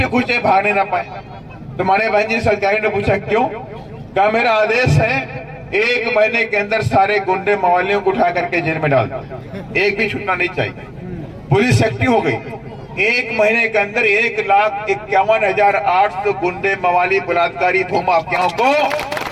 खुचे भागने ना पाए। तो हमारे बहन जी सरकारी ने पूछा क्यों? कहा मेरा आदेश है 1 महीने के अंदर सारे गुंडे मवालियों को उठा करके जेल में डाल दो, एक भी छूटना नहीं चाहिए। पुलिस एक्टिव हो गई, 1 महीने के अंदर 1,51,800 गुंडे मवाली बलात्कारी भूमाफियाओं को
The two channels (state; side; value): identical; both; correlation 1.00